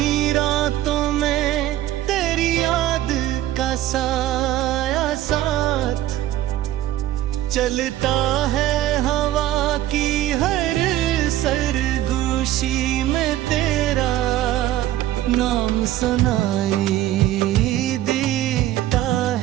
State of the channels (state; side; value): quieter; left; 13.8 dB